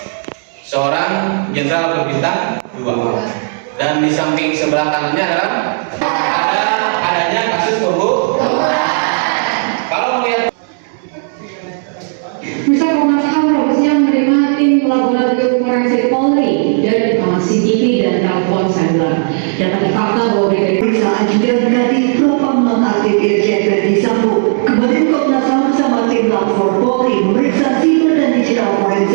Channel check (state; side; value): silent; left; digital silence